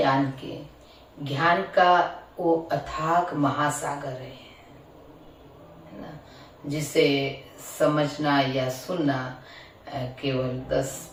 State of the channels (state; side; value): identical; both; correlation 1.00